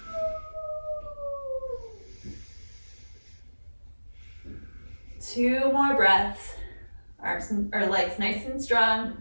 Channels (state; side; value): inverted; both; correlation -1.00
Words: Two more breaths. Arms or legs nice and strong.